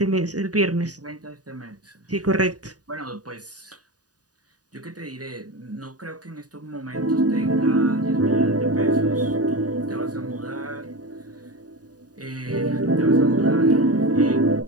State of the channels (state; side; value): late; left; 0.68 ms